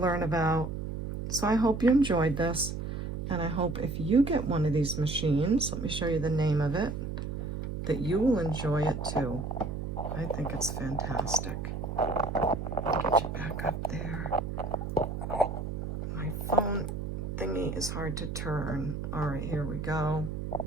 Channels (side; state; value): right; noise; hum, 5 dB below the sound